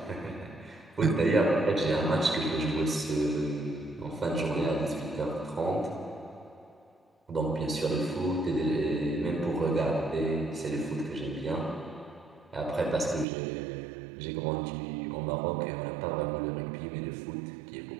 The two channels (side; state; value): left; drops out; at 13.2 s